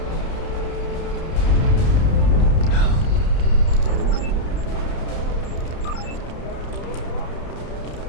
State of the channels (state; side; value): late; right; 31 ms